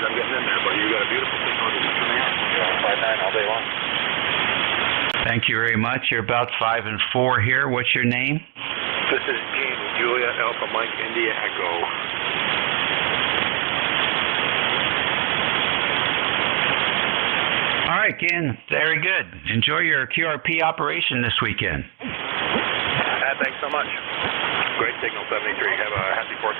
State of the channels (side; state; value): left; quieter; 29.0 dB